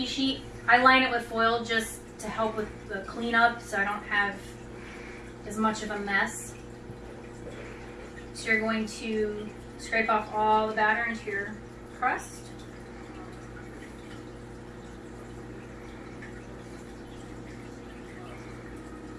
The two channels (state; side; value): identical; both; correlation 1.00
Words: sheet. I line it with foil just to help with the cleanup so I don't have as much of a mess. So you're going to scrape off all the batter into your crust.